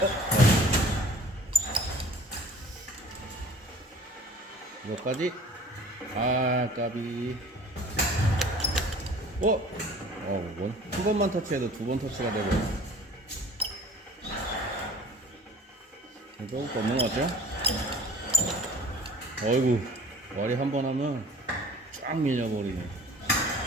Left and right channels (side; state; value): both; normal; correlation 0.46